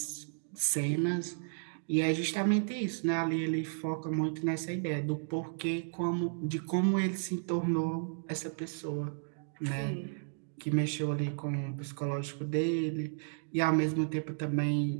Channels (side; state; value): left; silent; digital silence